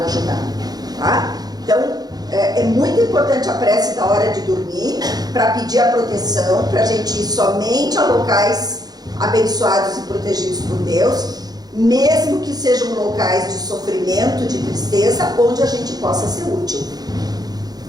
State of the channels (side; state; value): left; late; 0.19 ms